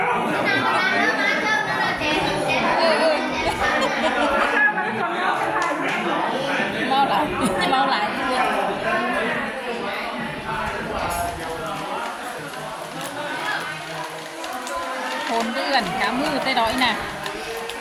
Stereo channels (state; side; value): identical; both; correlation 1.00